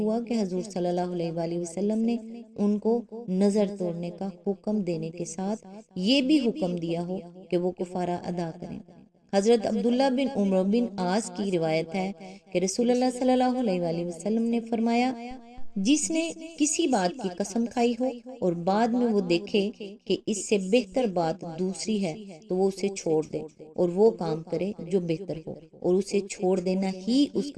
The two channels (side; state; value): both; identical; correlation 1.00